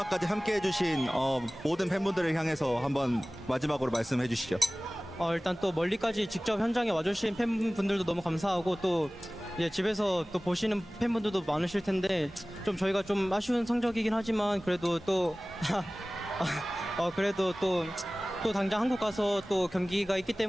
함께 해주신 모든 팬분들을 향해서 한번 마지막으로 말씀해 주시죠. 일단 또 멀리까지 직접 현장에 와주신 팬분들도 너무 감사하고 또 이제 집에서 또 보시는 팬분들도 많으실 텐데 좀 저희가 좀 아쉬운 성적이긴 하지만 그래도 또 그래도 또 당장 한국 가서 또 경기가 있기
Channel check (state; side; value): normal; both; correlation 0.98